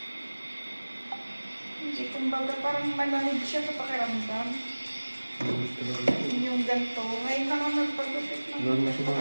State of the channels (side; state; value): both; inverted; correlation -1.00